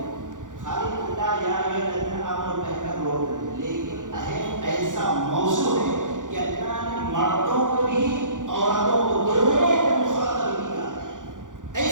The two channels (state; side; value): late; left; 0.87 ms